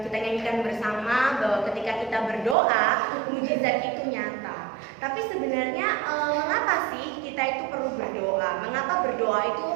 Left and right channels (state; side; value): drops out; left; at 2.6 s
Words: kita nyanyikan bersama bahwa ketika kita berdoa, mujizat itu nyata. Tapi sebenarnya mengapa sih kita itu perlu berdoa? Mengapa berdoa itu